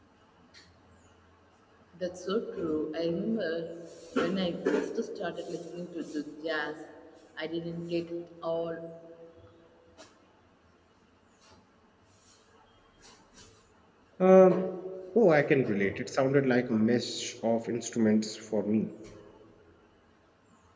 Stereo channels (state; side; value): identical; both; correlation 1.00